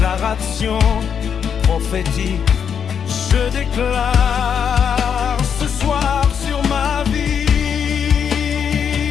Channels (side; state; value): right; quieter; 7.5 dB